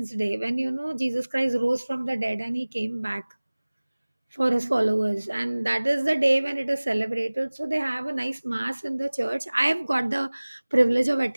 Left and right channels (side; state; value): both; inverted; correlation -1.00